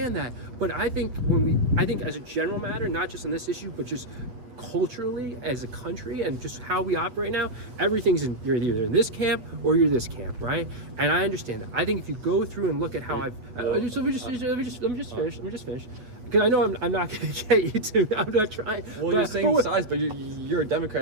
that. But I think as a general matter, not just on this issue, but just culturally as a country and just how we operate now, everything's you're either in this camp or you're this camp, right? And I understand that. I think if you go through and look at how let me just finish. Because I know I'm not going to get you to. I'm not trying. Well, you're saying size, but you're a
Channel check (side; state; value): left; late; 8.9 ms